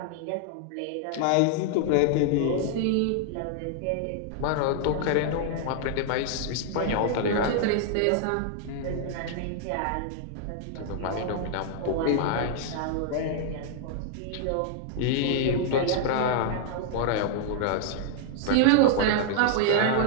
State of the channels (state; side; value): different; both; correlation -0.01